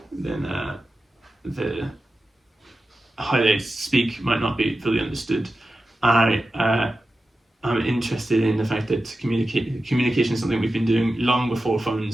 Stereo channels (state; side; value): normal; both; correlation 0.93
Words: then how they speak might not be fully understood. I'm interested in the fact that communication is something we've been doing long before